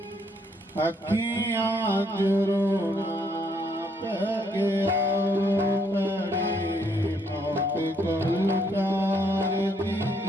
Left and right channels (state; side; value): normal; both; correlation 0.70